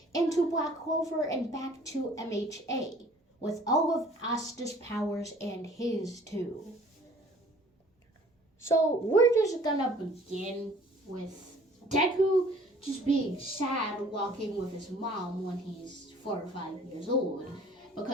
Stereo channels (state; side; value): normal; both; correlation 0.53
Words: into Black Clover and back to MHA with all of Asta's powers and his too? So we're just gonna begin with Deku just being sad walking with his mom when he's 4 or 5 years old